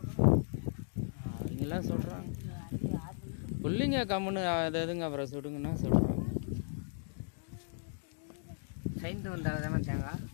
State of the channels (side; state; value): right; silent; digital silence